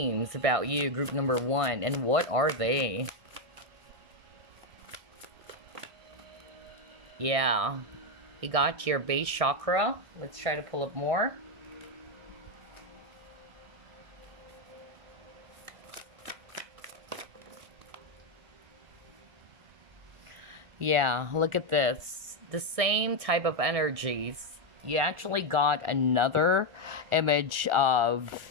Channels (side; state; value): left; late; 1.6 ms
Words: about you, group number 1? And what are they? Yeah. You got your base chakra. Let's try to pull up more. Yeah, look at this. The same type of energies. You actually got another image